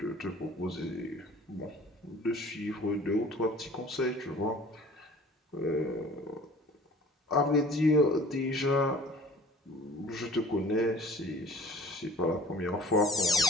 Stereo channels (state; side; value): normal; both; correlation 0.47